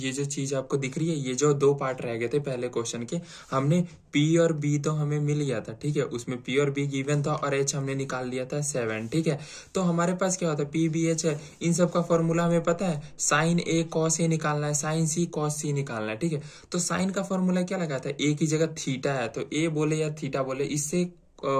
चीज आपको दिख रही है, ये जो दो पार्ट रह गए थे पहले क्वेश्चन के, हमने पी और बी तो हमें मिल गया था, ठीक है। उसमें पी और बी गिवन था और एच हमने निकाल लिया था 7, ठीक है। तो हमारे पास क्या होता है, पी बी एच है, इन सब का फॉर्मूला हमें पता है। साइन ए कॉस ए निकालना है, साइन सी कॉस सी निकालना है, ठीक है। तो साइन का फॉर्मूला क्या लगाता है, ए की जगह थीटा है तो ए बोले या थीटा बोले, इससे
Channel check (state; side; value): identical; both; correlation 1.00